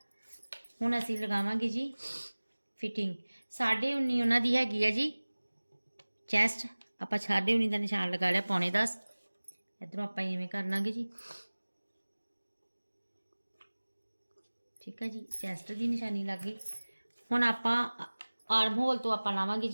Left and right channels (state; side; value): inverted; both; correlation -1.00